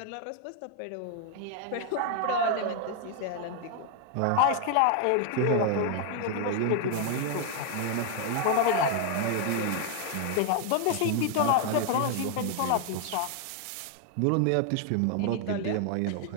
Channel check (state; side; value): different; both; correlation 0.00